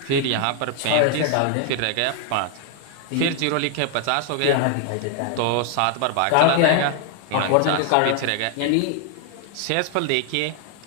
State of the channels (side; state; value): both; different; correlation 0.00